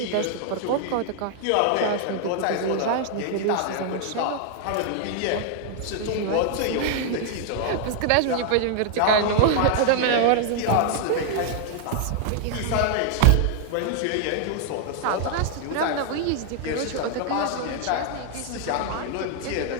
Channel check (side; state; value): both; different; correlation 0.00